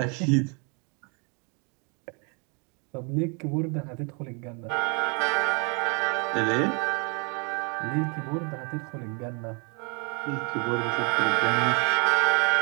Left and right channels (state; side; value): quieter; left; 34.3 dB